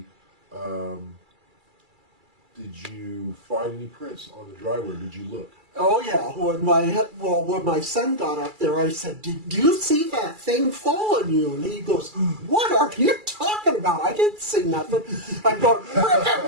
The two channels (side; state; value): left; late; 2.3 ms